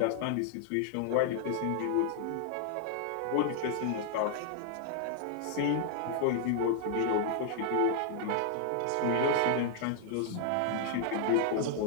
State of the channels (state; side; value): different; both; correlation 0.00